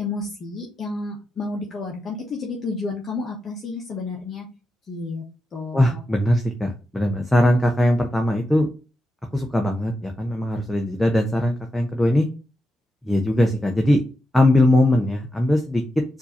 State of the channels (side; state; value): both; normal; correlation 0.88